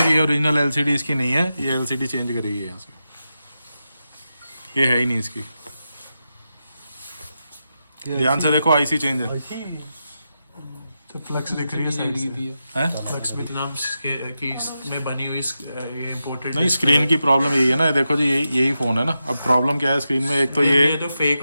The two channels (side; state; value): both; inverted; correlation -0.89